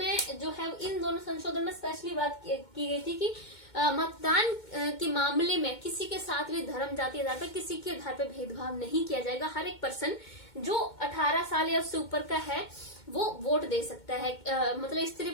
जो है इन दोनों संशोधन में स्पेशली बात की गई थी कि मतदान के मामले में किसी के साथ भी धर्म, जाति आधार पर, किसी के आधार पर भेदभाव नहीं किया जाएगा। हर एक पर्सन जो 18 साल या उससे ऊपर का है वो वोट दे सकता है। मतलब स्त्री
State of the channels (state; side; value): late; right; 2.2 ms